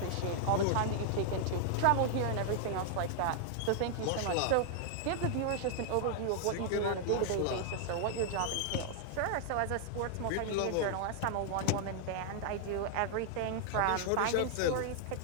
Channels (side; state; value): both; different; correlation 0.00